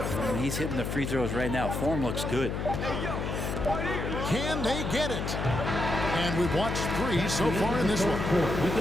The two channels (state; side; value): noise; left; hum, 2 dB below the sound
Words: he's hitting the free throws right now. Form looks good. Can they get it? And we've watched 3 so far in this one.